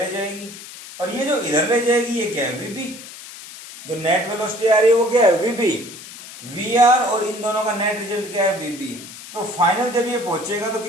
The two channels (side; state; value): left; noise; hiss, 15 dB below the sound